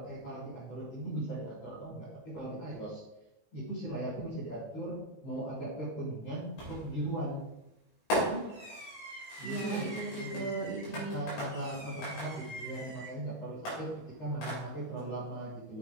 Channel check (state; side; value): late; right; 19 ms